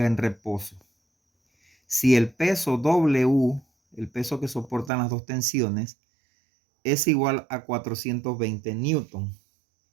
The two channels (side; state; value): left; drops out; at 4.9 s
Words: en reposo. Si el peso W, el peso que soportan las dos tensiones, es igual a 420 newton.